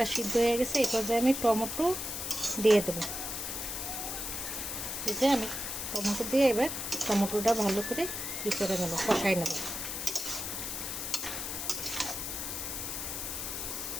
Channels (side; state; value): left; noise; hiss, 4 dB below the sound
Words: সিদ্ধ হয়ে গেছে। এই পর্যায়ে আমি টমেটো দিয়ে দেবো। এই যে আমি টমেটো দিয়ে এবার টমেটোটা ভালো করে করে নেব, কষাই নেব।